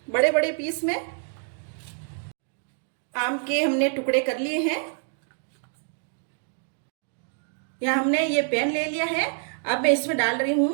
बड़े बड़े पीस में। आम के हमने टुकड़े कर लिए हैं। यहाँ हमने ये पैन ले लिया है। अब मैं इसमें डाल रही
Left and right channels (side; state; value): left; silent; 60 dB below the other